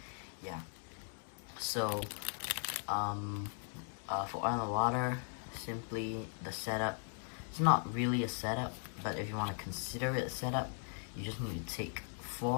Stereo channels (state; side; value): silent; right; 52 dB below the other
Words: Yeah, so for oil and water, simply the setup, it's not really a setup, but if you want to consider it a setup, you just need to take